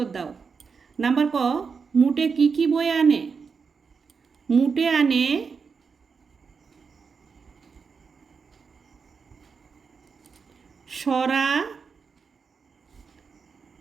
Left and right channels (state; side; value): quieter; left; 5.5 dB